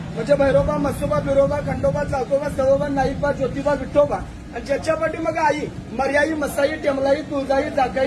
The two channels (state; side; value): identical; both; correlation 1.00